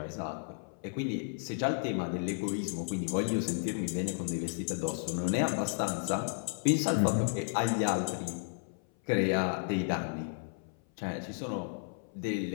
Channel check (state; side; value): silent; right; 56 dB below the other